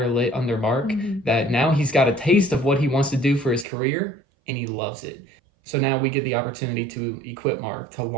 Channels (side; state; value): left; drops out; at 3.7 s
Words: lit under Mark, that now he's got a taste of what he wants to do for his career, and he loves it. So now we get the opportunity to equip Mark, to